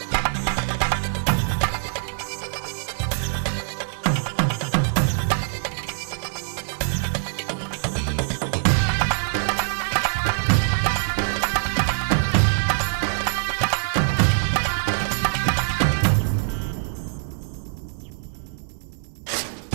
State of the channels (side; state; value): left; silent; digital silence